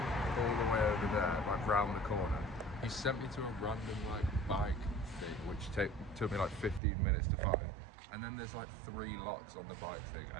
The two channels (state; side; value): drops out; left; at 6.8 s